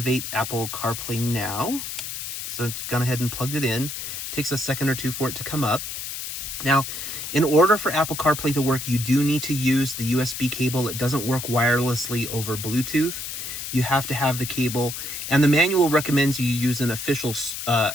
Apple CarPlay now. So it's gone ahead and plugged it in. It takes a second or two for it to come up. Now, in order for Apple CarPlay to work, you do need to use the USB cable. It doesn't work wirelessly over Bluetooth. You have to have the cable, and the manual recommends you use an official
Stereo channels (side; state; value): left; noise; hiss, 6 dB below the sound